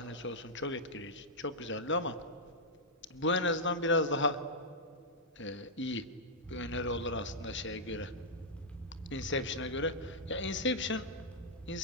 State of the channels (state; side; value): normal; both; correlation -0.08